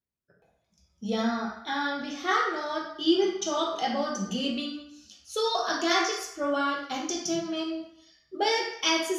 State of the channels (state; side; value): identical; both; correlation 1.00